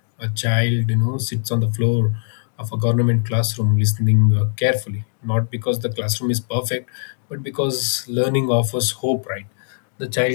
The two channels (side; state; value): right; silent; digital silence